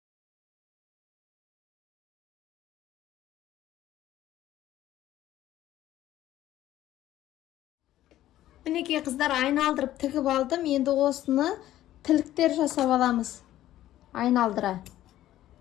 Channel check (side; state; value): right; quieter; 13.6 dB